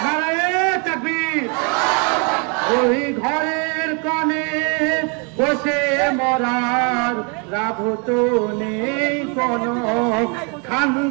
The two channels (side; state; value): left; quieter; 35.4 dB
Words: নারায়ে তাকবীর। ওই ঘরের কোণে বসে মরার লাভ তো নেই কোনো,